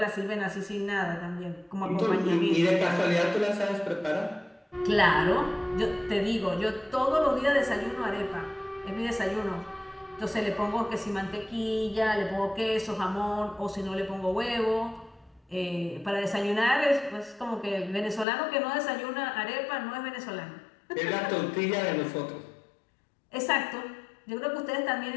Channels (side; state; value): right; drops out; at 18.2 s